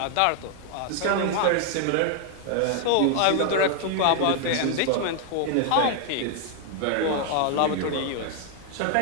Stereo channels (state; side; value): different; both; correlation 0.00